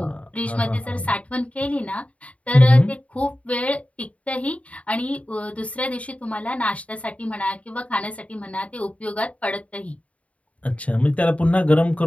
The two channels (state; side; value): late; right; 0.066 ms